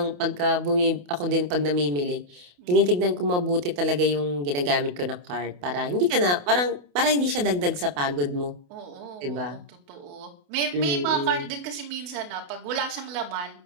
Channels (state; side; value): late; left; 28 ms